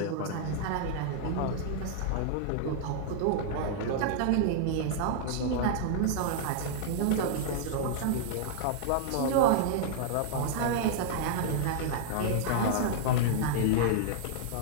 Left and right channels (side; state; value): both; different; correlation -0.01